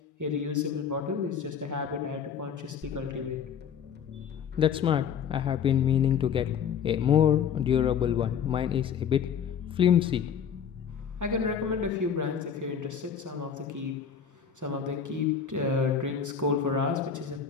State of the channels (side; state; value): right; quieter; 7.5 dB